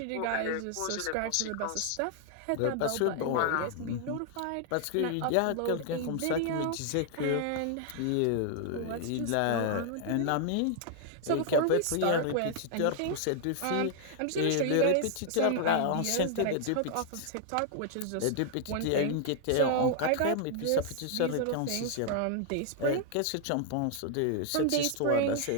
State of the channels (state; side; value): different; both; correlation 0.00